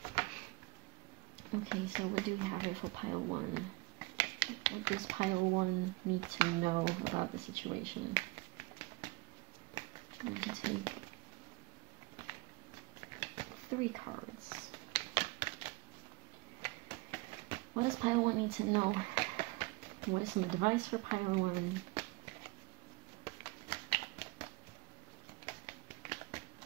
Okay, so what do we have here for pile 1? What does pile 1 need to know about the situation? I'm going to take 3 cards. What does pile 1 need to know? What is some advice for pile 1?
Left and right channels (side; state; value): left; quieter; 24.3 dB